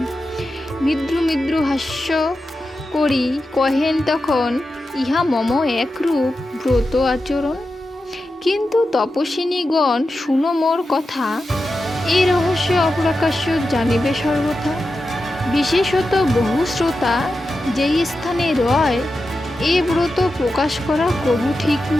মৃদু মৃদু হাস্য করি কহেন তখন, ইহা মম একরূপ ব্রত আচরণ। কিন্তু তপস্বিনীগণ শুনো মোর কথা, এই রহস্য অপ্রকাশ্য জানিবে সর্বথা। বিশেষত বহু শ্রোতা যেই স্থানে রয়, এ ব্রত প্রকাশ করা কবু ঠিক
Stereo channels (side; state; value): both; normal; correlation 0.90